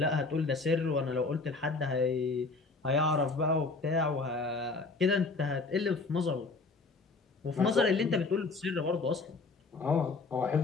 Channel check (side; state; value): right; quieter; 3.8 dB